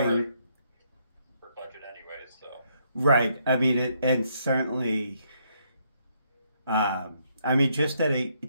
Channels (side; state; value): both; inverted; correlation -0.73